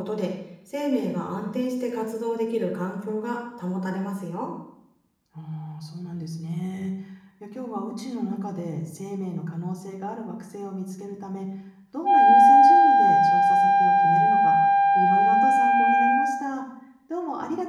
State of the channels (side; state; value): both; identical; correlation 1.00